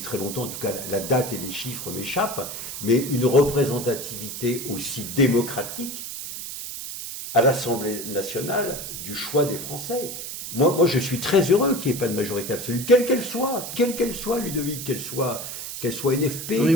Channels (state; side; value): noise; right; hiss, 8 dB below the sound